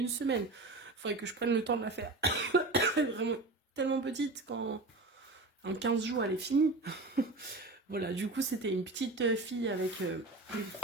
semaine. Il faudrait que je prenne le temps de la faire. Vraiment tellement petite qu'en 15 jours, elle est finie. Voilà, du coup, c'était une petite fille avec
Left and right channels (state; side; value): quieter; left; 3.2 dB